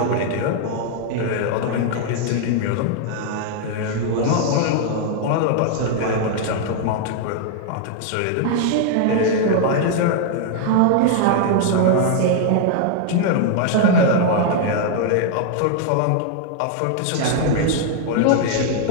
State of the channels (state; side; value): different; both; correlation 0.00